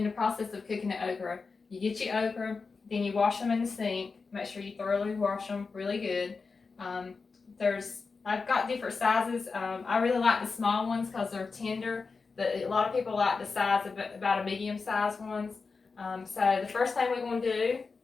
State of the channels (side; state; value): right; quieter; 4.6 dB